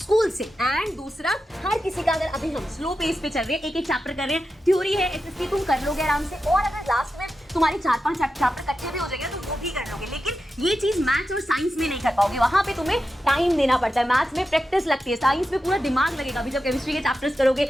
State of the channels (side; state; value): both; normal; correlation 0.90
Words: से। एंड दूसरा, हर किसी का, अगर अभी हम स्लो पेस पे चल रहे हैं, एक चैप्टर कर रहे हैं, थ्योरी है, एसएसटी तुम कर लोगे आराम से, और अगर लास्ट में तुम्हारे 4-5 चैप्टर कच्चे भी हो जाएंगे तो वो भी कर लोगे, लेकिन ये चीज मैथ्स और साइंस में नहीं कर पाओगे, वहां पे तुम्हें टाइम देना पड़ता है। मैथ्स में प्रैक्टिस लगती है, साइंस में पूरा दिमाग लगेगा। अभी जब केमिस्ट्री के चैप्टर्स करोगे,